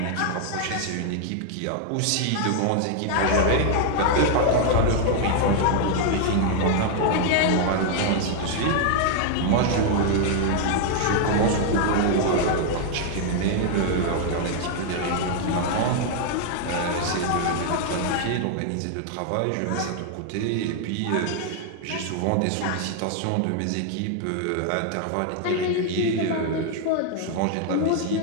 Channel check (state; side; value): different; both; correlation 0.00